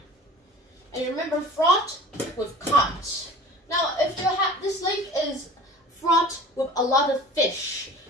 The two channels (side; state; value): both; normal; correlation 0.42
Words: And you remember fraught with caught. Now, if this lake is fraught with a lot of fish,